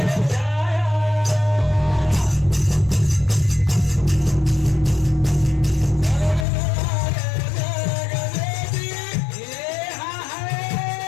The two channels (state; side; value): drops out; right; at 6.5 s